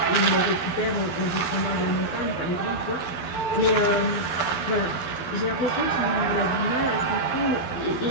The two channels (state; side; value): late; right; 12 ms